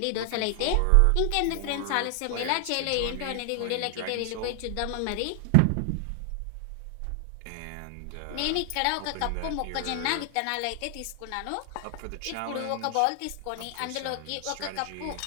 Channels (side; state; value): both; different; correlation 0.00